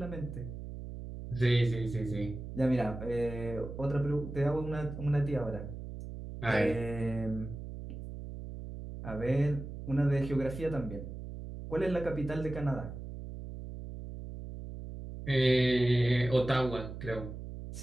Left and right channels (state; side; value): noise; right; hum, 9 dB below the sound